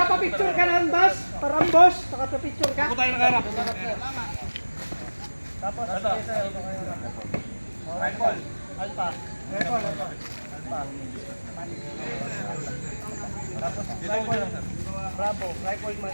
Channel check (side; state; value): both; inverted; correlation -1.00